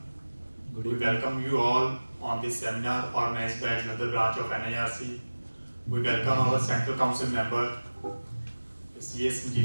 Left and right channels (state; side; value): inverted; both; correlation -1.00